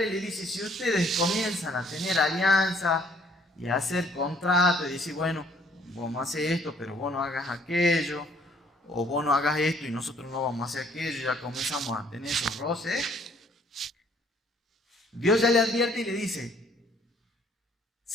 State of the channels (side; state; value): both; normal; correlation 0.61